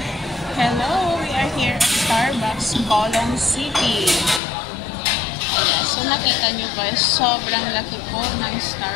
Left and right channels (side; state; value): right; drops out; at 4.4 s